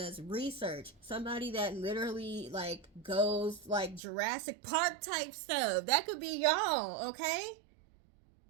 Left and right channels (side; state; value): left; drops out; at 4.0 s